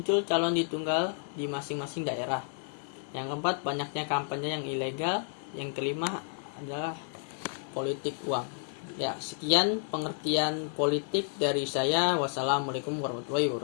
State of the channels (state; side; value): silent; right; 57 dB below the other